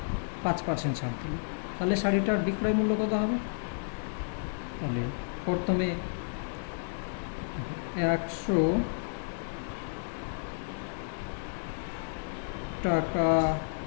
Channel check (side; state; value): right; silent; digital silence